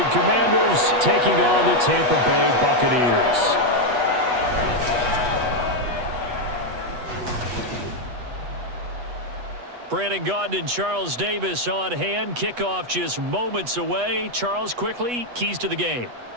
Commanders taking on the Tampa Bay Buccaneers. Brandon Gaudin and Charles Davis on hand. Kickoff just moments away. Charles, quickly, keys to the game.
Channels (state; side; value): late; left; 8.2 ms